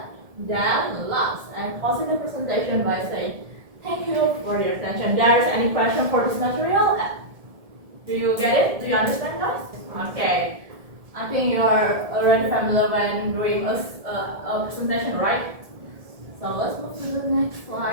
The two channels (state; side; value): late; left; 1.7 ms